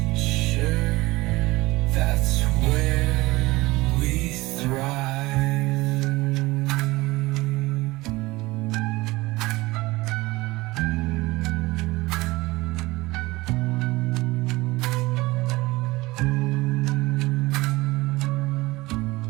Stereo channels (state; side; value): quieter; left; 20.8 dB